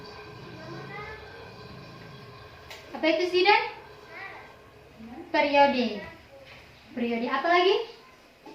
apa itu sih, Dan? Periode. Periode apa lagi?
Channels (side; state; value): both; identical; correlation 1.00